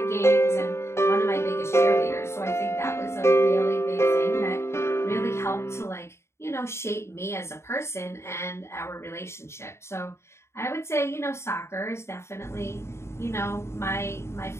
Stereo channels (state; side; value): late; right; 0.13 ms